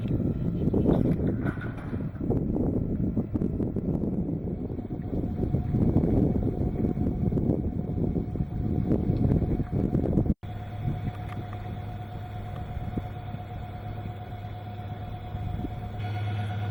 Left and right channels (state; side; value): identical; both; correlation 1.00